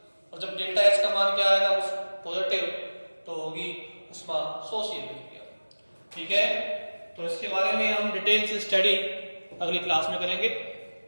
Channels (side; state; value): both; inverted; correlation -1.00